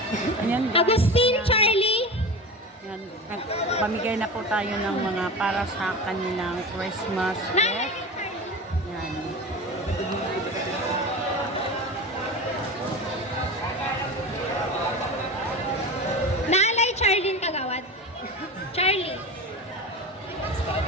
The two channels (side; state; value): both; normal; correlation 0.29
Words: Ayan, guys. Agustin, Charlie. Ayan, pamigay na po tayo ng mga para sa kanilang Christmas gift. Ayan. Naalay Charlene Kagawad. Charlie.